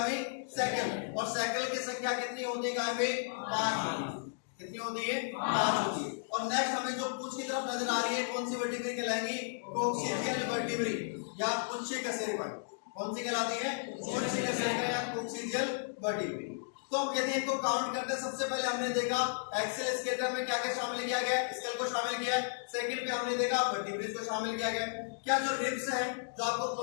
सैक्रल। और सैक्रल की संख्या कितनी होती है गाय में? 5। कितनी होती है? 5 होती है। और नेक्स्ट हमें जो पूंछ की तरफ नजर आ रही है कौन सी वर्टिब्री कहलाएंगी? कोक्सीजियल वर्टिब्री या पुच्छी कशेरुकाएं। कौन सी कहलाती है? पुच्छी कशेरुकाएं या कोक्सीजियल वर्टिब्री। तो हम यदि इनको काउंट करते हैं, सबसे पहले हमने देखा एक्सियल स्केलेटन में क्या क्या शामिल किया गया? स्कल को शामिल किया है। सेकंड पे हमने देखा वर्टिब्रेज को शामिल किया गया। क्या जो रिब्स है जो आपको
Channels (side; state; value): right; silent; digital silence